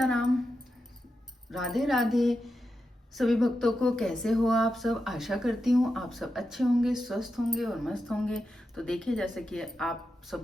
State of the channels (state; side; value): normal; both; correlation 0.88